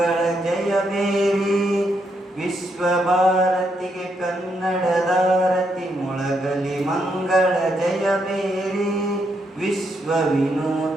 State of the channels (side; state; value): both; normal; correlation 0.78